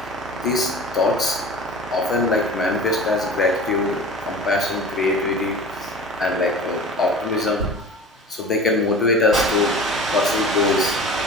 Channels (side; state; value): both; normal; correlation 0.37